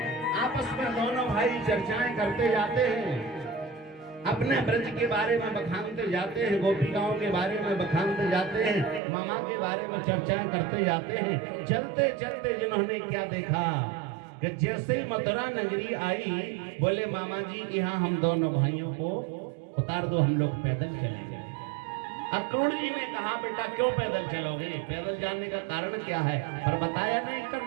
आपस में दोनों भाई चर्चाएं करते जाते हैं, अपने ब्रज के बारे में बखानते जाते हैं, गोपिकाओं के बारे में बखानते जाते हैं, मामा के बारे में चर्चाएं करते जाते हैं। चलते चलते जिन्होंने क्या देखा कि जैसे ही मथुरा नगरी आई, बोले मामा जी यहाँ हम दोनों भाइयों को उतार दो, हम लोग पैदल चलेंगे। अक्रूर जी ने कहा, बेटा क्यों पैदल चलोगे, पैदल जाने का कारण क्या है? पर बताया नहीं,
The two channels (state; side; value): drops out; left; at 9.0 s